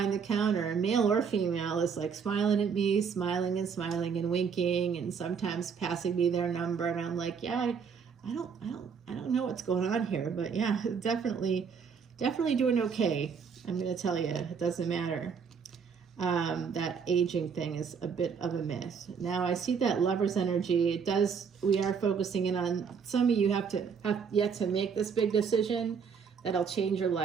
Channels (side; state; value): left; quieter; 6.3 dB